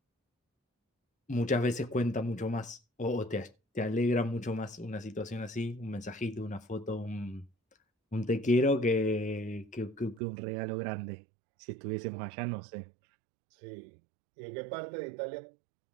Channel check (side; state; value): left; drops out; at 10.2 s